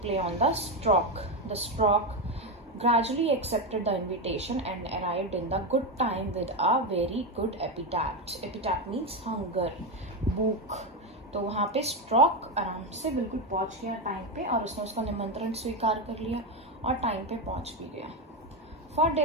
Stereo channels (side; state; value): both; normal; correlation 0.11